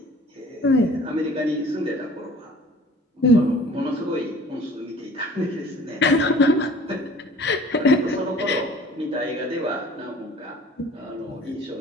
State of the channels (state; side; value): normal; both; correlation 0.48